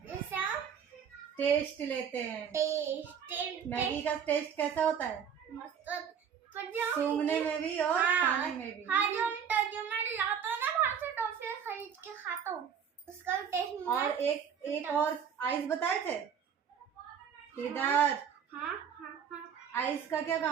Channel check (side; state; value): left; quieter; 7.7 dB